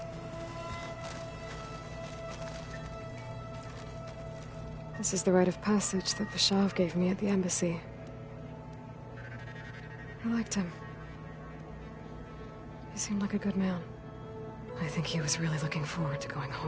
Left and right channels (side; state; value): both; identical; correlation 1.00